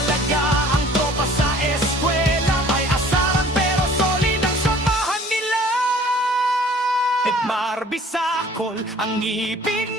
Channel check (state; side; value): normal; both; correlation 0.51